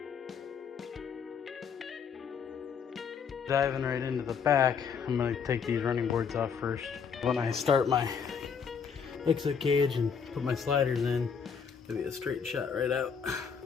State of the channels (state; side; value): quieter; right; 6.5 dB